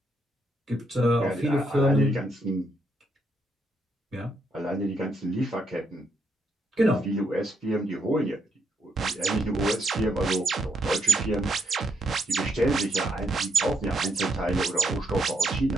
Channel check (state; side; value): normal; both; correlation 0.77